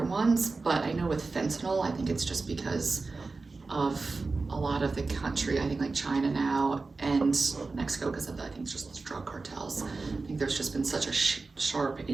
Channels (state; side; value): quieter; left; 3.9 dB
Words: ones, but I know with fentanyl, I think it's just because of a lot of the country, I think like China now and Mexico, because of I think it's just drug cartels. I think there's just been such a sharp